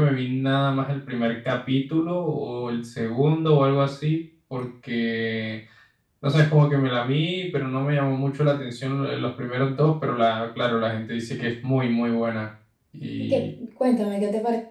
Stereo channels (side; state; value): both; identical; correlation 1.00